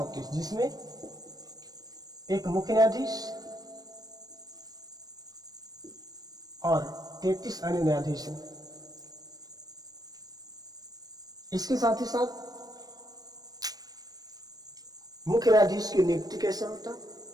जिसमें एक मुख्य न्यायाधीश और 33 अन्य न्यायाधीश हैं। इसके साथ ही साथ मुख्य न्यायाधीश की नियुक्ति कैसे होता,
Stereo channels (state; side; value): late; left; 0.19 ms